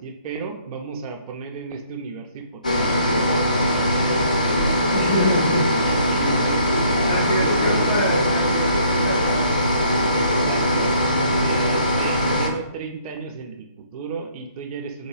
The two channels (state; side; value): inverted; both; correlation -0.62